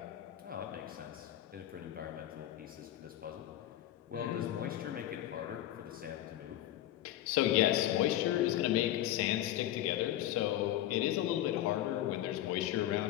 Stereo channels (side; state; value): right; quieter; 13.3 dB